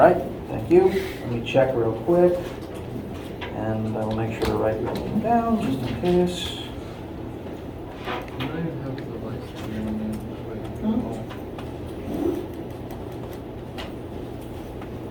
thank you. Let me check real quick. And I will make sure to write your name down just in case.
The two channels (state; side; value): identical; both; correlation 1.00